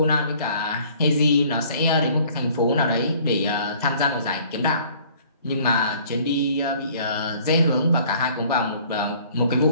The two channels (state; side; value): inverted; both; correlation -0.55